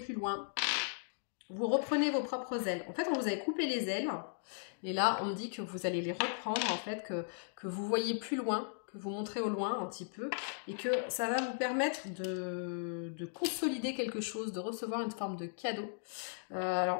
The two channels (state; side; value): silent; right; digital silence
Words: loin. Vous reprenez vos propres ailes. En fait, on vous avait coupé les ailes. Et là, on me dit que vous allez les reprendre, en fait, que vous voyez plus loin, que vous montrez au loin un petit peu, et que ça va vous permettre de consolider quelque chose, de recevoir une forme de cadeau,